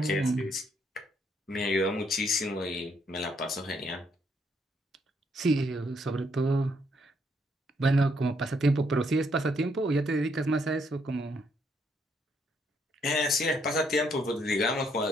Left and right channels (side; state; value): both; normal; correlation 0.72